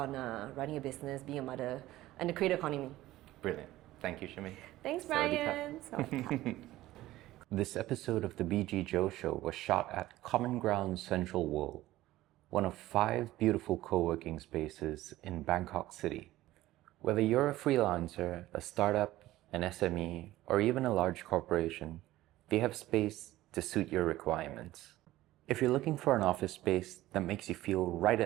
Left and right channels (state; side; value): quieter; left; 16.1 dB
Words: running a business, being a mother, and the creator economy. Brilliant. Thank you, Shermaine. Thanks, Brian. This episode of the BG.JO show was shot at Common Ground Central World, one of 5 beautiful co-working spaces in Bangkok City. Whether you're a freelancer, a startup, an SME, or even a large corporation, they have space to suit your requirements. If you're looking for an office space that makes you feel right